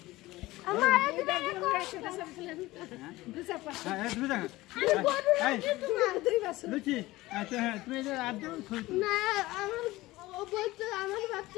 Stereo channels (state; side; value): quieter; right; 18.7 dB